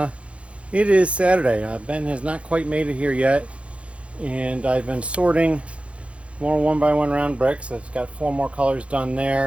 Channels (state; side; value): late; left; 0.061 ms